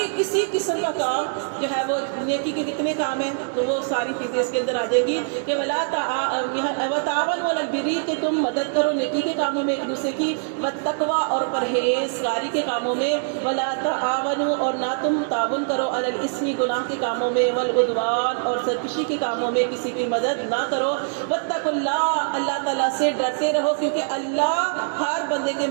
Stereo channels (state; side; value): silent; left; digital silence